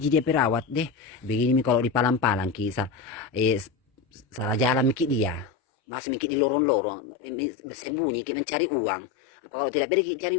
dia perawat deh begini mi kalau di palang-palang kisah salah jalan mikir dia masih mikir di lorong-lorong bersembunyi kita mencari uang apa kalau tidak pergi cari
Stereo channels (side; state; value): right; drops out; at 5.5 s